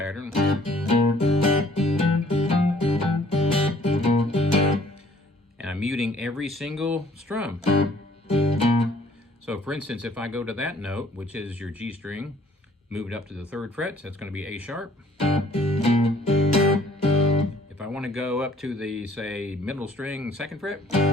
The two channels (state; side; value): normal; both; correlation 0.59